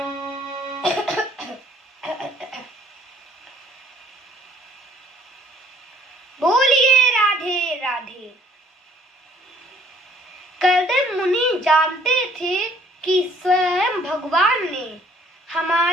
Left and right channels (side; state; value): both; normal; correlation 0.59